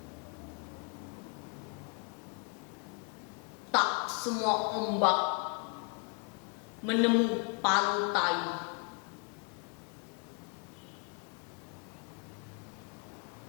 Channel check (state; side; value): quieter; right; 38.9 dB